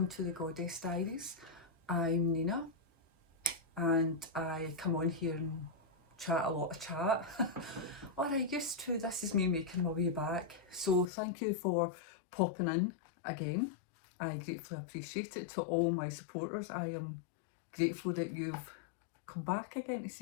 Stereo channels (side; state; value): right; drops out; at 11.1 s